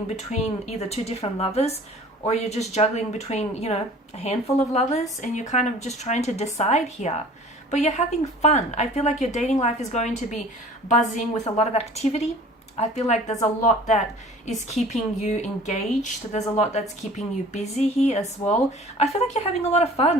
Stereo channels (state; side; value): normal; both; correlation 0.47